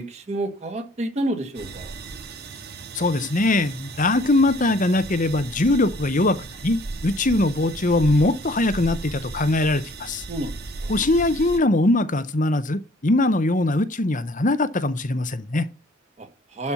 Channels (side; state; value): both; normal; correlation 0.58